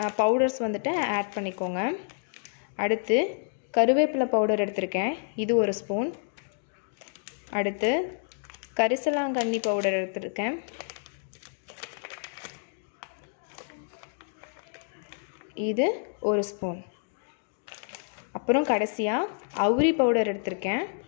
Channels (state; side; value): silent; right; digital silence